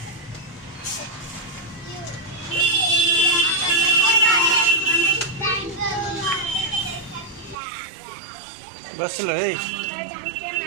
बस लो है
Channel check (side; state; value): left; drops out; at 7.6 s